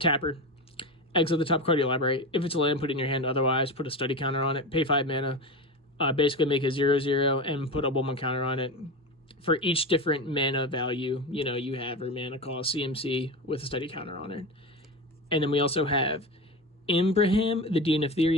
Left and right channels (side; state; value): both; normal; correlation 0.23